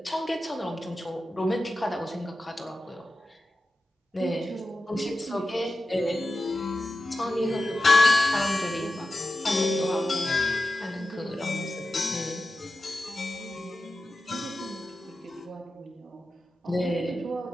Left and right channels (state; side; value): normal; both; correlation 0.93